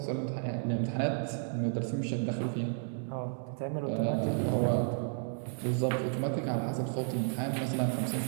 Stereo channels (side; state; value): left; silent; 56 dB below the other